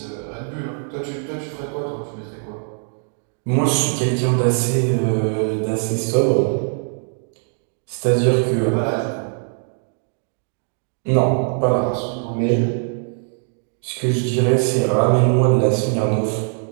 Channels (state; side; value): silent; left; 56 dB below the other